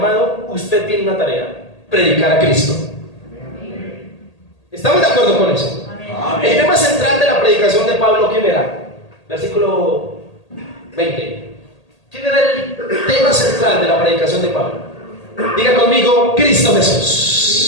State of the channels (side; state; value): right; late; 1.8 ms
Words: usted tiene una tarea: predicar a Cristo. ¿Estamos de acuerdo con eso? Amén. El tema central de la predicación de Pablo, ¿quién era? Versículo 20. ¿Quién era el tema central de la predicación de Pablo? Diga conmigo: Cristo